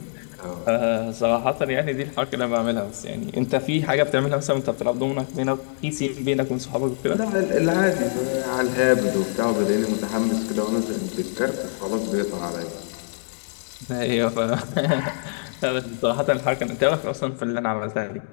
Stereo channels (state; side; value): silent; right; digital silence